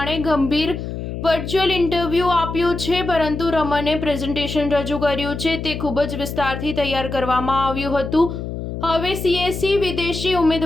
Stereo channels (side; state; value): left; noise; hum, 6 dB below the sound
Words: ગંભીર વર્ચ્યુઅલ ઇન્ટરવ્યૂ આપ્યું છે, પરંતુ રમને પ્રેઝન્ટેશન રજૂ કર્યું છે. તે ખૂબ જ વિસ્તારથી તૈયાર કરવામાં આવ્યું હતું. હવે CSC વિદેશી